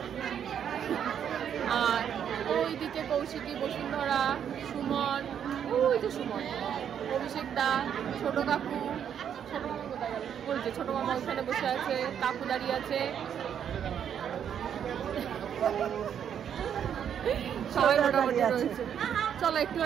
আর ওইদিকে কৌশিকী, বসুন্ধরা, সুমন, ওই যে সুমন, অভিষেক দা, ছোট কাকু, ছোট মামা কোথায় গেল? ওই যে ছোট মামা ওখানে বসে আছে, কাকু দাঁড়িয়ে আছে, সবাই মোটামুটি রয়েছে। চলো একটু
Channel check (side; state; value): left; quieter; 8.7 dB